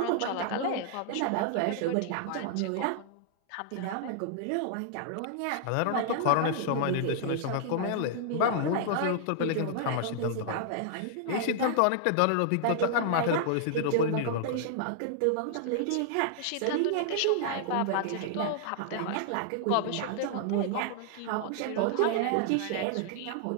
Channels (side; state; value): both; different; correlation -0.01